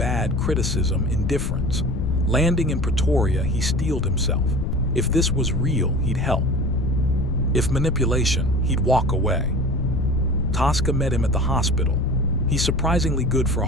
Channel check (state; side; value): noise; left; rumble, 2 dB below the sound